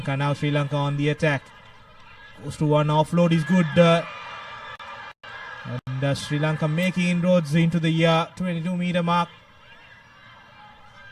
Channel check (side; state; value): both; identical; correlation 1.00